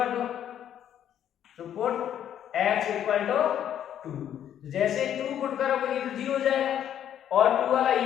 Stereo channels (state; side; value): quieter; right; 10.1 dB